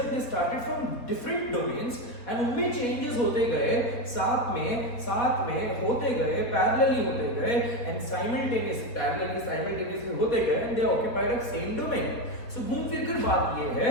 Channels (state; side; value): late; right; 4.2 ms